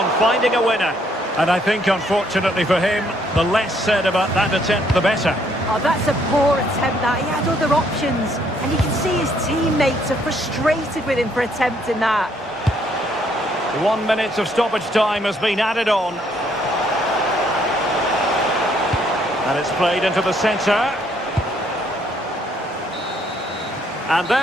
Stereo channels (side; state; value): both; normal; correlation 0.68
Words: finding a winner. And I think, unfortunately for him, the less said about that attempt, the better. Oh, that's a poor attempt, that. He had other options. And you can see his teammates are frustrated with him for attempting that. 1 minute of stoppage time has been added on. And it's played into the centre. And